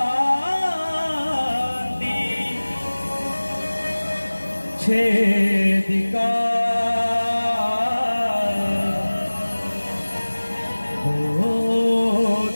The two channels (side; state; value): both; inverted; correlation -1.00